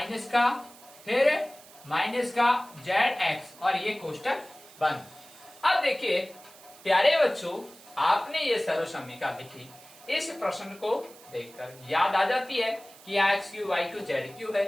का, फिर माइनस का zx और ये कोष्टक बंद। अब देखिए प्यारे बच्चों, आपने ये सर्वसमीका लिखी, इस प्रश्न को देखकर याद आ जाती है कि यहाँ x³ y³ z³ है,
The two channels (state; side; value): noise; right; hiss, 22 dB below the sound